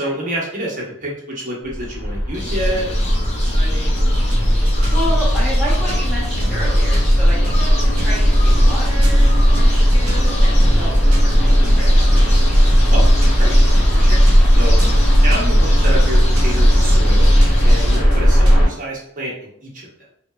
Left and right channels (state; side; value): normal; both; correlation 0.93